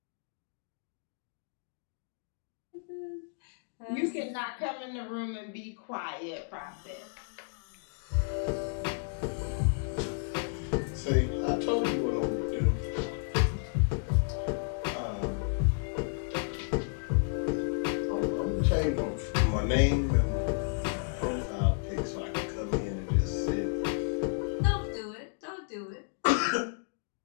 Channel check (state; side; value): silent; right; digital silence